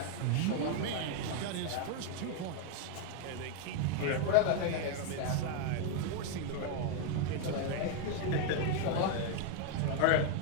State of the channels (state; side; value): different; both; correlation 0.01